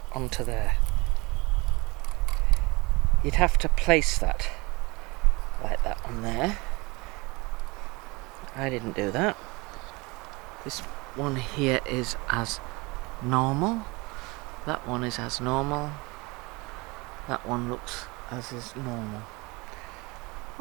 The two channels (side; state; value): left; quieter; 25.3 dB